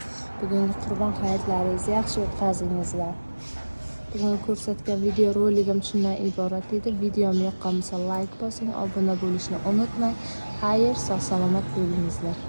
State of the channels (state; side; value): inverted; both; correlation -1.00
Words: Bugungi qurbon hayitlaringizni yaxshi o'tkazingizlar. Bugun ko'rsatgan video roligim shundan iborat edi. Videom yoqqan bo'lsa like bosing, obuna bo'lishni unutmang. Xayr, sog' salomat bo'lingizlar.